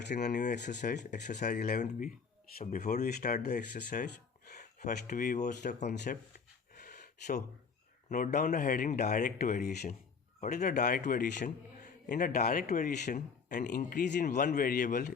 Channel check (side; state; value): right; quieter; 5.6 dB